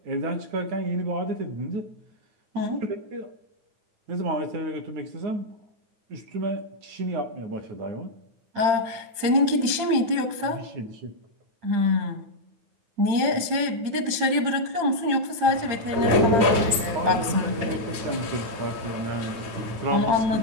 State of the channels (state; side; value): late; left; 8.8 ms